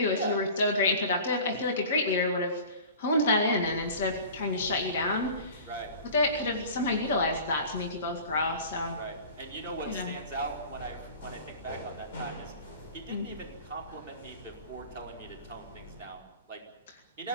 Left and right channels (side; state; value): both; inverted; correlation -0.40